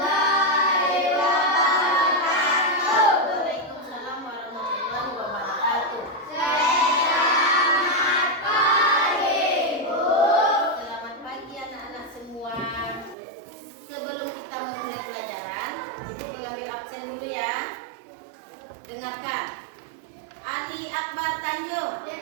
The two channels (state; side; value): drops out; left; at 13.2 s